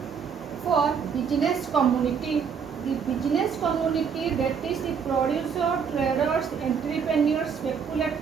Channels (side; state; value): left; quieter; 6.6 dB